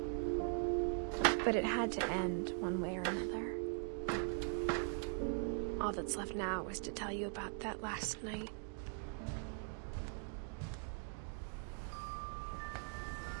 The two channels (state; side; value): silent; left; 50 dB below the other